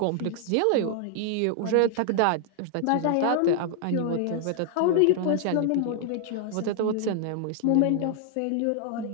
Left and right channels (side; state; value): both; different; correlation 0.00